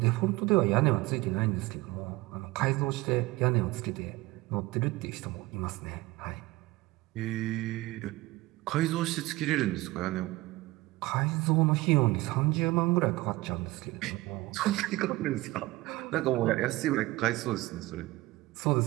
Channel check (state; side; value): quieter; left; 19.9 dB